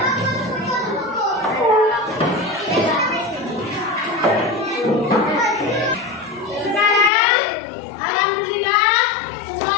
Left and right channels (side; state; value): right; drops out; at 7.1 s